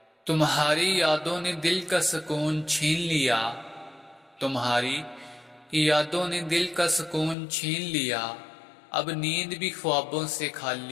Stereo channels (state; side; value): drops out; right; at 7.4 s